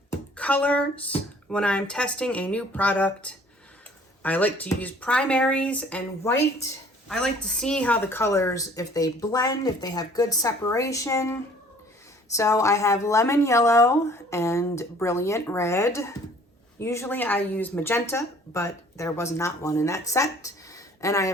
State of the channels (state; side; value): normal; both; correlation 0.54